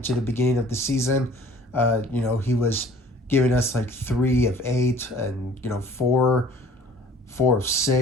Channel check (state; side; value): normal; both; correlation 0.51